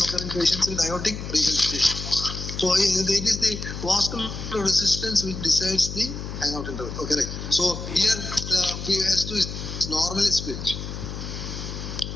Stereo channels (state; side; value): noise; left; hum, 7 dB below the sound